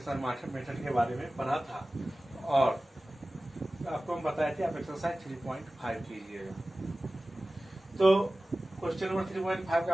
मेथड के बारे में पढ़ा था और आपको हम बताए थे आप एक्सरसाइज 3.5 कीजिएगा। तो क्वेश्चन नंबर 3.5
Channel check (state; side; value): normal; both; correlation 0.96